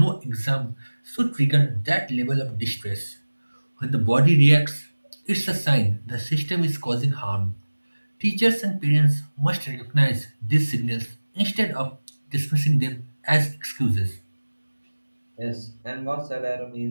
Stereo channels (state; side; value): inverted; both; correlation -1.00